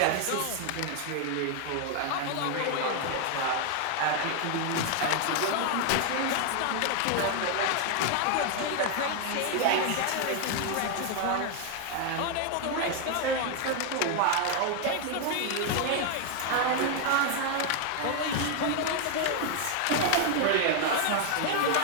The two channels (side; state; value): both; different; correlation 0.00